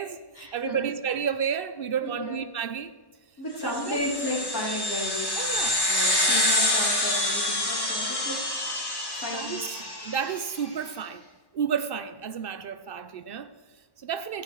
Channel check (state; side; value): late; right; 1.1 ms